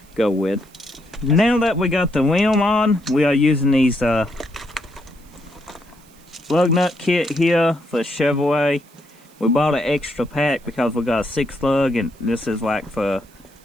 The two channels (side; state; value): right; noise; hiss, 29 dB below the sound